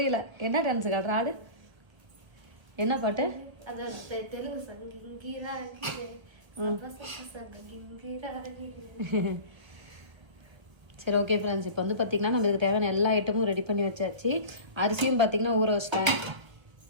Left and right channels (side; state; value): left; late; 1.4 ms